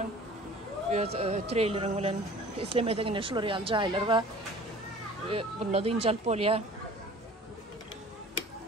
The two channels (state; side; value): normal; both; correlation 0.46